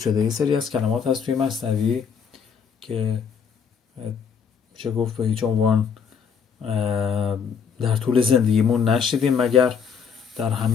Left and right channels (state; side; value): quieter; right; 6.7 dB